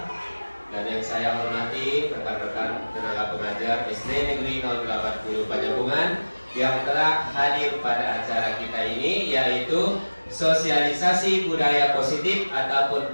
dan yang saya hormati rekan-rekan tenaga pengajar SD Negeri 080 Panjabungan yang telah hadir pada acara kita ini, yaitu sosialisasi budaya positif ataupun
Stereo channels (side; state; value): both; inverted; correlation -1.00